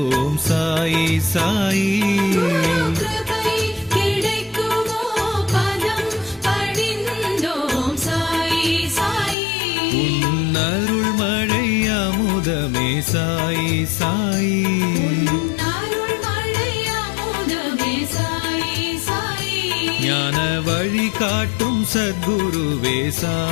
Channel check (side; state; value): right; drops out; at 9.3 s